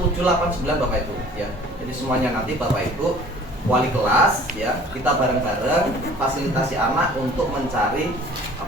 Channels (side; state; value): both; normal; correlation 0.50